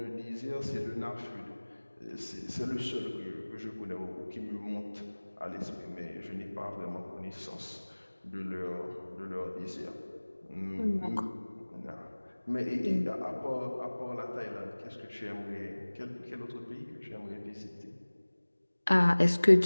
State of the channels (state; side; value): inverted; both; correlation -1.00